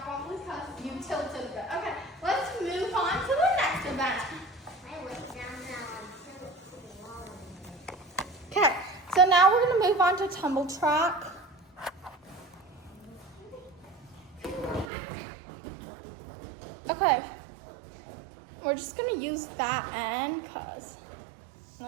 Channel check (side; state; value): left; drops out; at 14.9 s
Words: probably because you tilted a bit. Okay, let's move on to the next event. Okay, so now we're going to move on to tumble track. Okay, we're just going to use that end because.